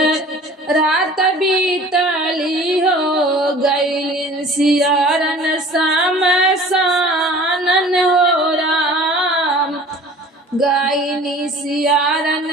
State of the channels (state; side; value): normal; both; correlation 0.45